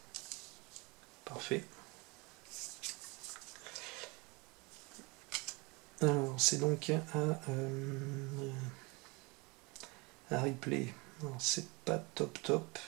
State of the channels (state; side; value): quieter; left; 26.9 dB